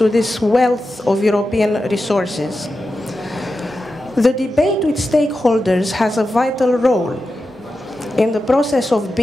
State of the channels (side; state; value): both; normal; correlation 0.91